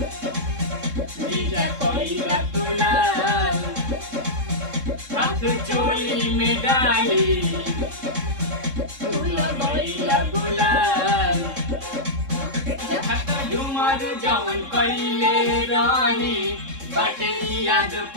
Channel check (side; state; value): left; late; 3.7 ms